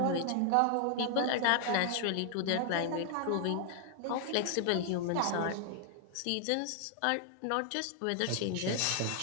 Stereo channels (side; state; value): both; different; correlation 0.00